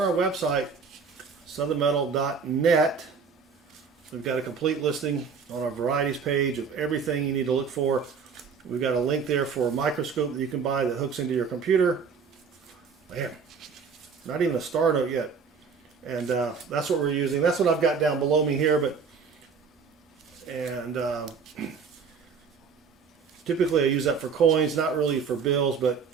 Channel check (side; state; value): left; quieter; 5.7 dB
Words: our website, southernmetal.net, we've got a complete listing on our varieties page of everything you need to look for. We've got a link there for a microscope that you can buy that hooks into your computer. Man, not even a star note yet. And that's what we're using. That's what I've got down below me here. Typically I use that for coins, not really for bills, but